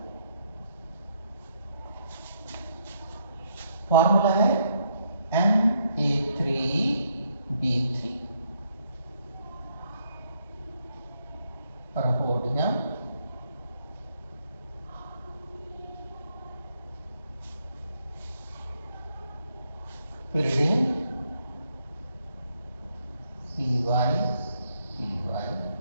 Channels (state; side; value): inverted; both; correlation -0.74